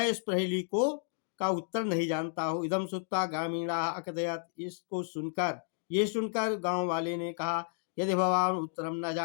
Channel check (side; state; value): right; silent; digital silence